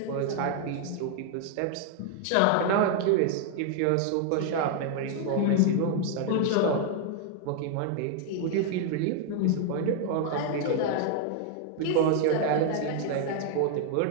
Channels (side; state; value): both; different; correlation 0.00